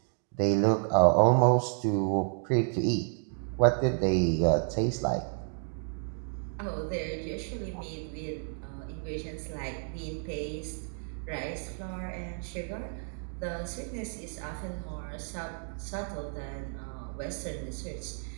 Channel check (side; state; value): left; silent; 57 dB below the other